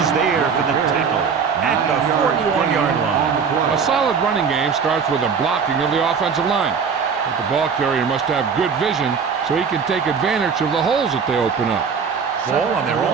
there for the tackle at the 41-yard line. A solid running game starts with a blocking of the offensive line. But the ball carrier must have good vision so he can take advantage of the holes that they open up. Ball on their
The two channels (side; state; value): left; quieter; 6.0 dB